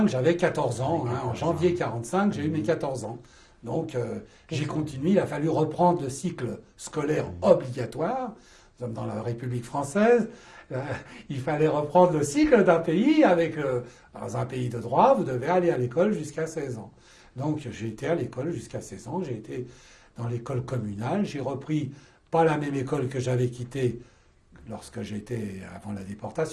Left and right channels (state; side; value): identical; both; correlation 1.00